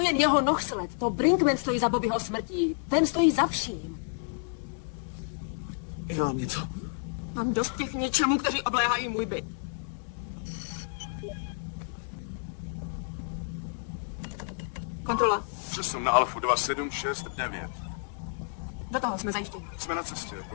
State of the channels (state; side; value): silent; right; digital silence